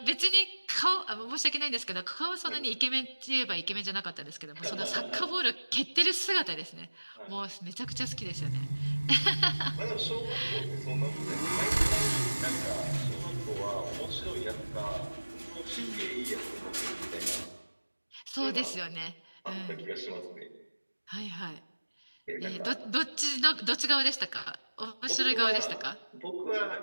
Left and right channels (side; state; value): both; inverted; correlation -1.00